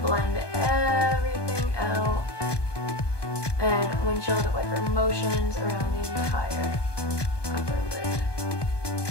blend everything out and windshield wiper motions around the entire upper lid.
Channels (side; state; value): right; late; 1.2 ms